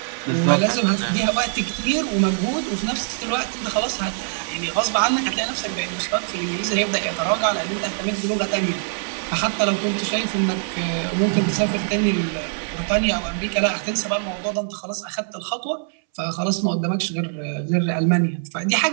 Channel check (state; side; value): silent; left; 64 dB below the other